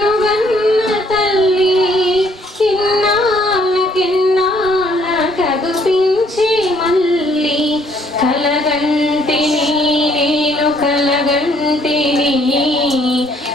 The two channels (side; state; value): both; normal; correlation 0.64